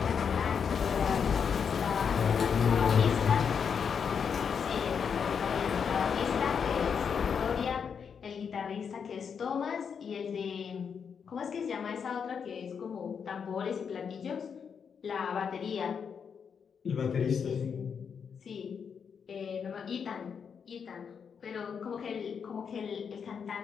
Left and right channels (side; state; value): right; quieter; 6.7 dB